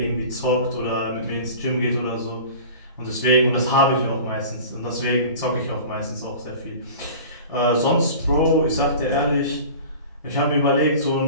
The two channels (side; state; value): both; inverted; correlation -0.39